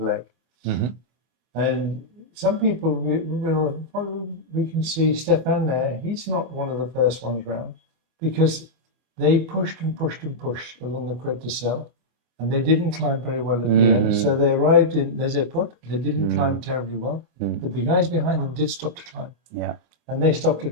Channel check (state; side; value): late; left; 25 ms